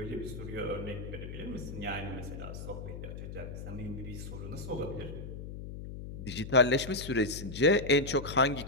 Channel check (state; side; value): noise; left; hum, 9 dB below the sound